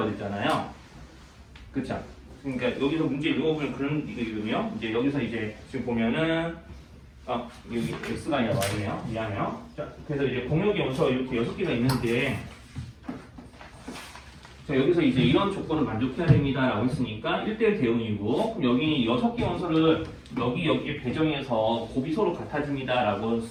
했잖아요. 그쵸? 그러니까 여기서 문제 읽어보면 그런 이거거든요. 이제 여기서 이제 지금 보면은 여기 x가 아니라 y네요. 미안해요. 자, 그래서 이제 공역의 원소가 이렇게 6개가 있는데 자, 여기서 이제 이런 조건을 만족해야 됩니다 라고 했으니까 1대1 대응이고 그럼 여기 6개 원소를 여기에 배정해서 곱이 서로 같아집니다 라고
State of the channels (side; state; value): both; identical; correlation 1.00